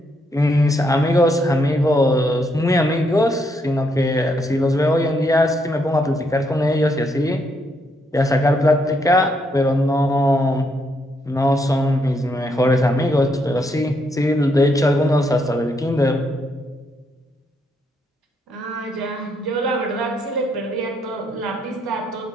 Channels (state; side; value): normal; both; correlation 0.76